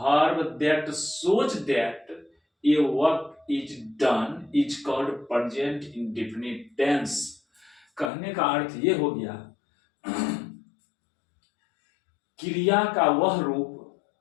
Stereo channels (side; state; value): right; drops out; at 8.1 s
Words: that shows that a work is done is called present indefinite tense. कहने का अर्थ ये हो गया, क्रिया का वह रूप